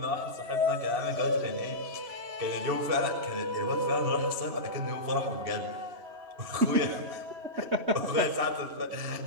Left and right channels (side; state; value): left; late; 2.7 ms